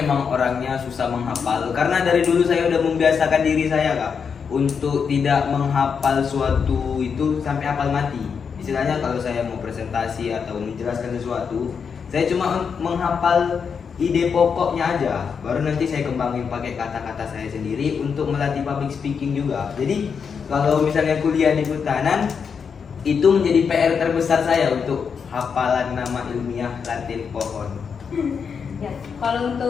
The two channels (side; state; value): right; quieter; 6.3 dB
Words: orangnya susah menghafal. Karena dari dulu saya udah membiasakan diri saya Kak untuk tidak menghafal suatu itu sampai hafal mati. Istilahnya kalau saya mau presentasi atau menjelaskan sesuatu, saya cuma menghafal ide pokoknya aja, baru nanti saya kembangin pakai kata-kata saya sendiri untuk melatih public speaking juga. Jadi kalau misalnya kuliah di kehutanan, itu menjadi PR terbesar saya untuk hafalan nama ilmiah Latin pohon. Ya, kalau